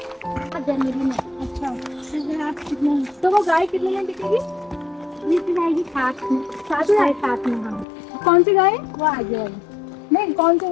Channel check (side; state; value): right; drops out; at 7.9 s